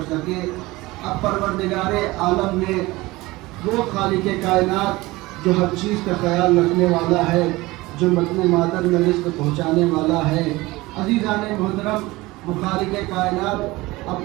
सके। अब परवरदिगारे आलम ने वो खालिक़े कायनात जो हर चीज़ का ख्याल रखने वाला है, जो मतने मादर में रिज़्क़ पहुँचाने वाला है, अज़ीज़ाने मुहतरम वो खालिक़े कायनात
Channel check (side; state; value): left; quieter; 20.5 dB